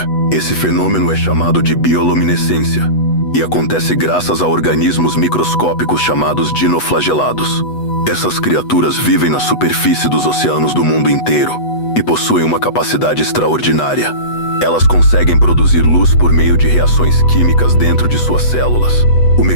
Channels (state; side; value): late; right; 8.1 ms